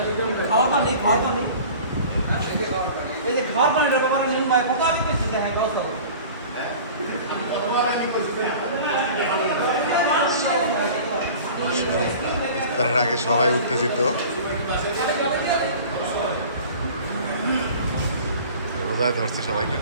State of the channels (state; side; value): inverted; both; correlation -0.42